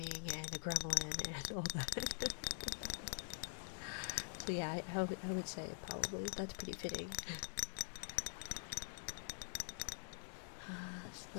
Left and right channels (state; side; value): silent; right; digital silence